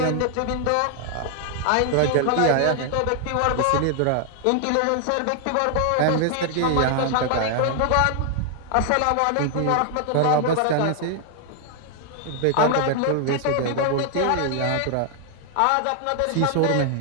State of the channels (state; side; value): different; both; correlation 0.00